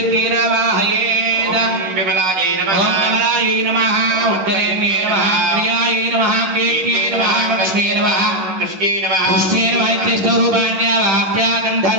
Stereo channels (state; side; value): late; left; 11 ms